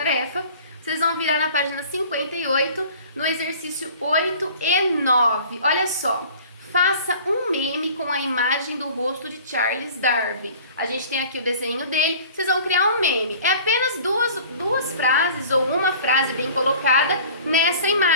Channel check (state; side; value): inverted; both; correlation -0.46